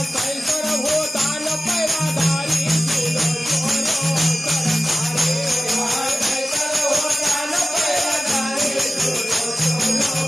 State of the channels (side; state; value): both; normal; correlation 0.96